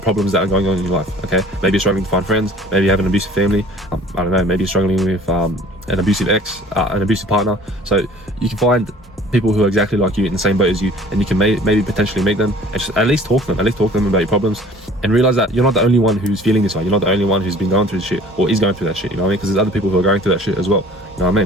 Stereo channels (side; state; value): both; normal; correlation 0.50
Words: that are going on in your life. Okay, maybe you're struggling to find friends, maybe you have an abusive family, I don't know, maybe you're struggling with an abusive ex, an abusive partner. So you can find people who are exactly like you in the same boat as you, and you can maybe potentially meet them and just at least talk to them about your problems, and realize that you're not the only one who's feeling this way. You're not the only one who's been going through this shit or is going through that shit, you know what I mean? Because there's other people who are going through that shit as well, you know what I